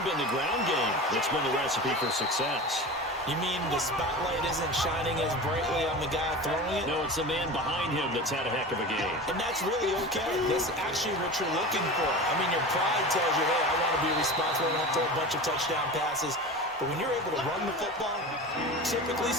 been the ground game that's been the recipe for success. You mean the spotlight isn't shining as brightly on the guy throwing it? No, it's the man behind him that's had a heck of a game. And that's really okay. That's actually what you're looking for. I mean, your pride tells you, hey, I want to be responsible. I want to throw a bunch of touchdown passes. But when you're able to run the football, typically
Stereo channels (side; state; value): both; normal; correlation 0.31